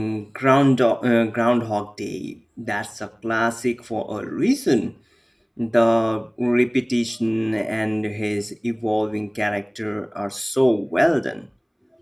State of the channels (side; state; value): both; identical; correlation 1.00